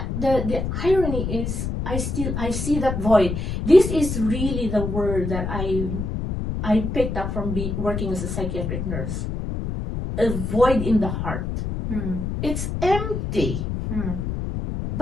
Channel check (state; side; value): noise; left; rumble, 3 dB below the sound